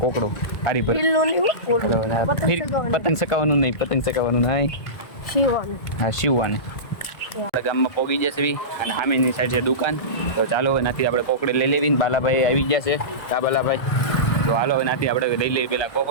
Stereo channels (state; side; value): late; right; 1.4 ms